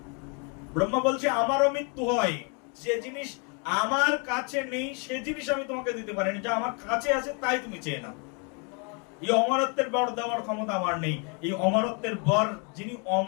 ব্রহ্মা বলছে আমারও মৃত্যু হয়, যে জিনিস আমার কাছে নেই সে জিনিস আমি তোমাকে দিতে পারিনি, যা আমার কাছে আছে তাই তুমি চেয়ে নাও। এই অমরত্বের বর দেওয়ার ক্ষমতা আমার নেই। এই অমরত্বের বর যিনি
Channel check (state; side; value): quieter; right; 36.4 dB